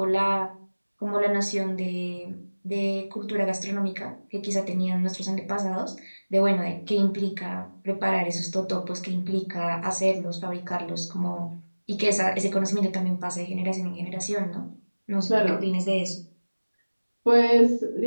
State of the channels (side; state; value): both; inverted; correlation -1.00